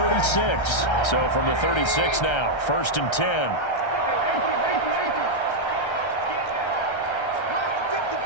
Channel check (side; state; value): right; late; 1.3 ms